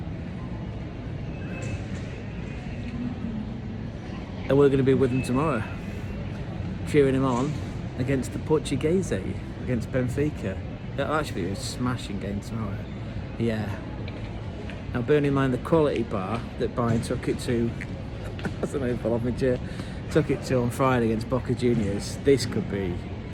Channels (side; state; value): both; identical; correlation 1.00